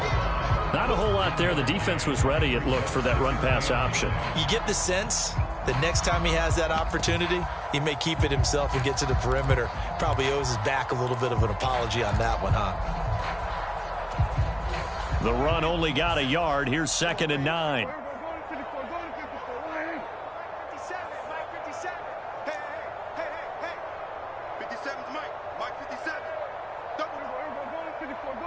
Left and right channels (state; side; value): identical; both; correlation 1.00